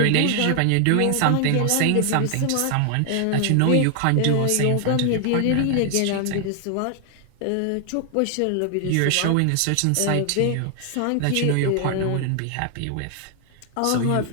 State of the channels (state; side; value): different; both; correlation 0.00